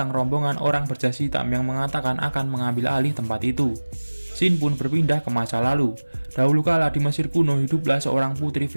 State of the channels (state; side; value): inverted; both; correlation -1.00